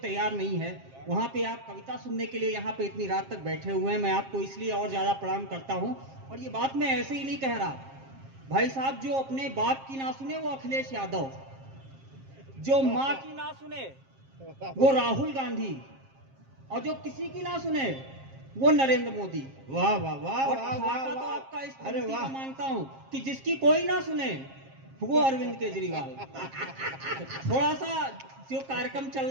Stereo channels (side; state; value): left; late; 7.5 ms